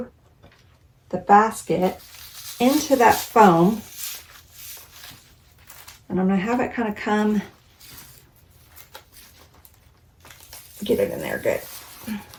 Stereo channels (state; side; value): identical; both; correlation 1.00